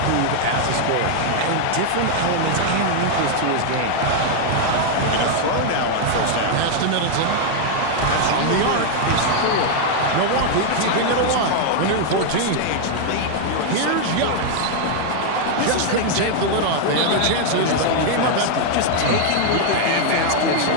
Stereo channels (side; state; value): both; different; correlation 0.00